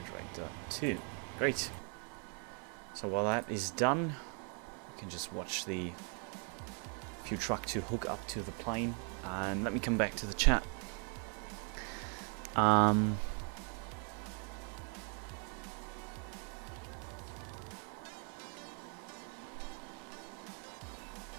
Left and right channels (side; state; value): left; quieter; 39.1 dB